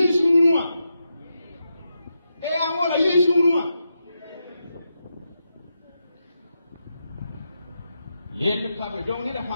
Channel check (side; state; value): both; inverted; correlation -0.86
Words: ou moi. Et voilà, yes ou moi. Le table, donc il a